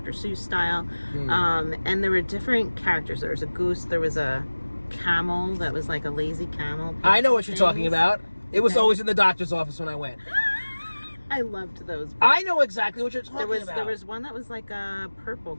Seuss style. And there were different characters. There was a goose, there was a camel that was like a lazy camel. I know what you're talking about. It was always in the doctor's office when I went. I loved those books. I know exactly what you're talking about. There was one that was like a purple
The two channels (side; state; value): both; inverted; correlation -1.00